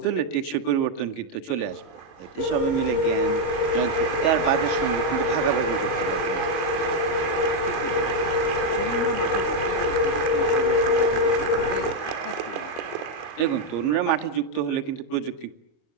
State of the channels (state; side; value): late; right; 25 ms